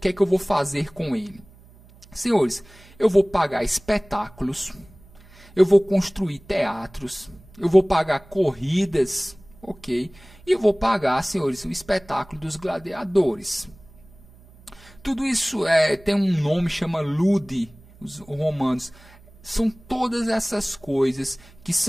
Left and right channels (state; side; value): noise; right; hum, 25 dB below the sound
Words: é que eu vou fazer com ele? Senhores, eu vou pagar espetáculos, eu vou construir teatros, eu vou pagar corridas, ok? E eu vou pagar, senhores, o espetáculo dos gladiadores. Tudo isso tem um nome, chama ludi, os romanos. São todas essas coisas que